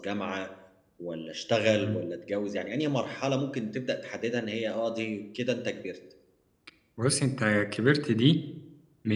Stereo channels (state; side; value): identical; both; correlation 1.00